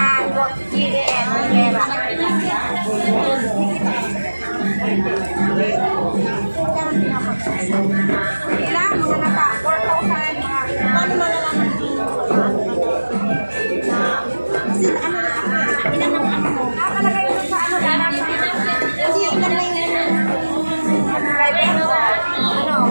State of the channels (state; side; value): inverted; both; correlation -1.00